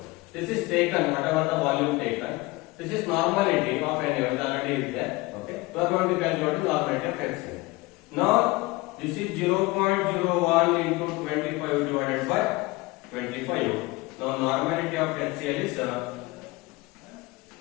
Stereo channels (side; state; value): right; quieter; 22.3 dB